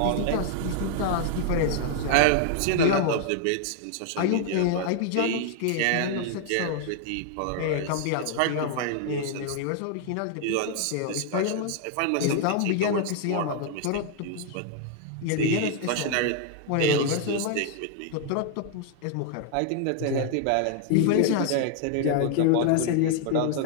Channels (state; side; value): different; both; correlation 0.00